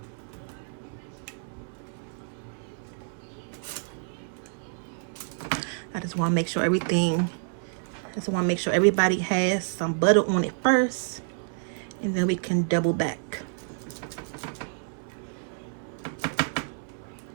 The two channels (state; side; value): silent; left; 59 dB below the other